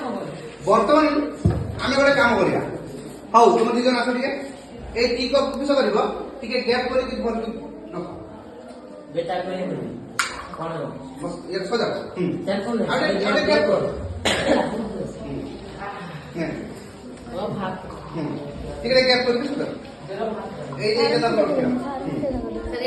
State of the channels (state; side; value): identical; both; correlation 1.00